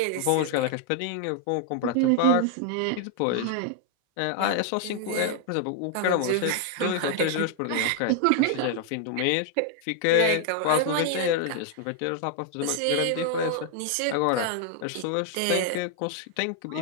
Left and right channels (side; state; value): both; different; correlation 0.00